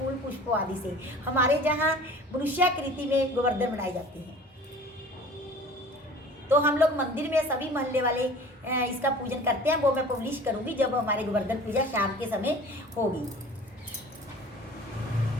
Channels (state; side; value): normal; both; correlation 0.44